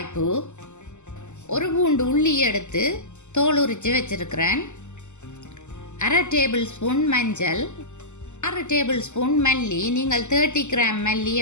ஒரு பூண்டு உள்ளி எடுத்து தோல் உரித்து வச்சிருக்கிறேன். 1/2 டேபிள் ஸ்பூன் மஞ்சள், 6 டேபிள் ஸ்பூன் மல்லி, நீங்கள் 30 கிராம் மல்லி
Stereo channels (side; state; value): right; late; 0.83 ms